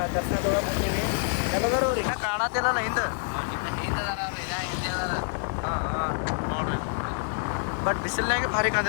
ದರ್ಶನ ತೊಗೊಳಕ್ಕೆ ಹೊಂಟೀವಿ. ಎಲ್ಲದರ ಅವ್ರು ಇನ್ನೂ ಕಾಣತ್ತಿಲ್ಲಲ್ಲ ಹಿಂದೆ. ಹಾಂ ಹಾಂ ನೋಡ್ರಿ, ಬಟ್ ಬಿಸಿಲ್ನಾಗೆ ಭಾರಿ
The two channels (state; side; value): silent; right; digital silence